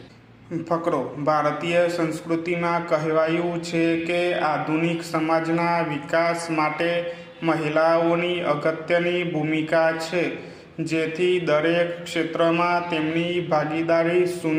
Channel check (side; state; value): both; identical; correlation 1.00